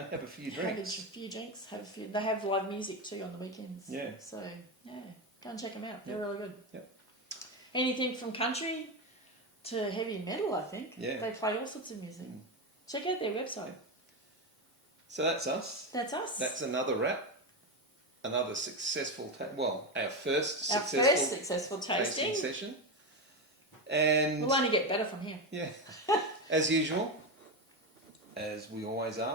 have a few drinks. They have live music too on the weekends. Yeah. So, yeah, go and check them out. They're really good. Yeah. Anything from country to heavy metal, I think. Yeah. They play all sorts of music. Check out their website. So that's us. That's us. That's another wrap. Another successful... our first successful tasting. session. And... We'll only get better from here. Yeah. As usual, as we always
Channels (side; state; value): both; normal; correlation 0.13